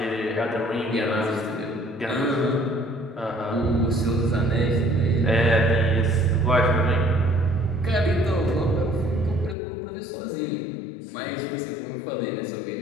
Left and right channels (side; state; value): right; drops out; at 9.6 s